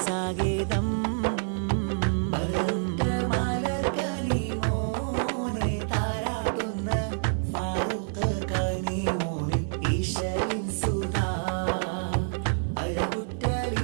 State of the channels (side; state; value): left; silent; digital silence